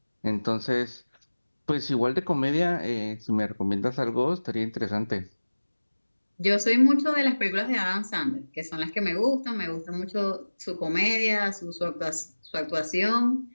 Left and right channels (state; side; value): inverted; both; correlation -1.00